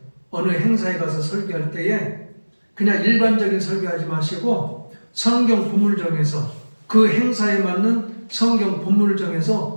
어느 행사에 가서 설교할 때에 그냥 일반적인 설교하지 마시고 성경 본문을 정해서 그 행사에 맞는 성경 본문을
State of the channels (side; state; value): both; inverted; correlation -1.00